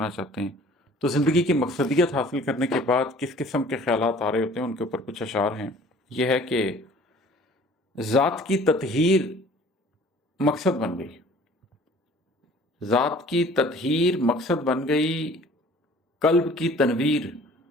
چاہتے ہیں۔ تو زندگی کی مقصدیت حاصل کرنے کے بعد کس قسم کے خیالات آ رہے ہوتے ہیں، ان کے اوپر کچھ اشعار ہیں۔ یہ ہے کہ ذات کی تطہیر مقصد بن گئی، ذات کی تطہیر مقصد بن گئی، قلب کی تنویر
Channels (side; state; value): both; normal; correlation 0.51